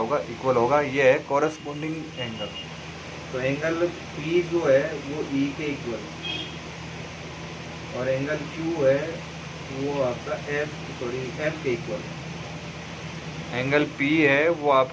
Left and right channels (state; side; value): identical; both; correlation 1.00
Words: इक्वल होगा। ये है कॉरस्पॉन्डिंग एंगल। तो एंगल P जो है वो E के इक्वल और एंगल Q है वो आपका F के इक्वल। एंगल P है वो